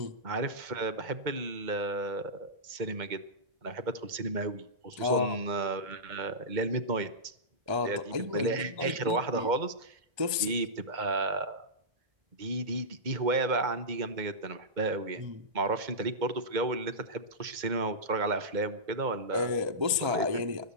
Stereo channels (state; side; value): late; left; 1.3 ms